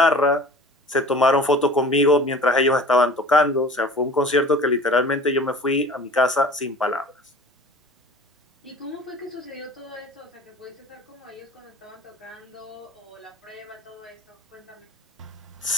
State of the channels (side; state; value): both; normal; correlation 0.43